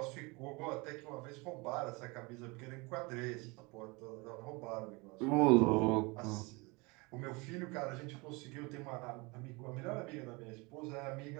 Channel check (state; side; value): quieter; left; 26.5 dB